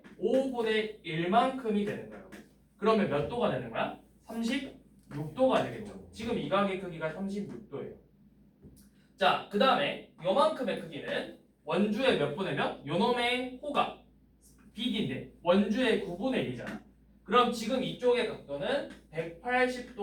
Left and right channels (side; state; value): both; identical; correlation 1.00